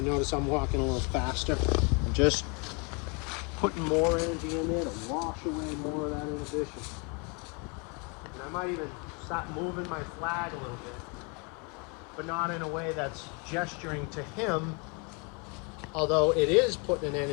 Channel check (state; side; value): quieter; right; 32.6 dB